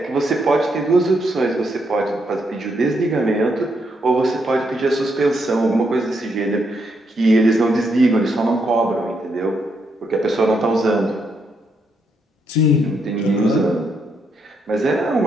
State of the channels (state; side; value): normal; both; correlation 0.78